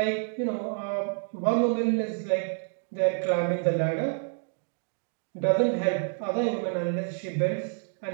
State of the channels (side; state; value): left; silent; 59 dB below the other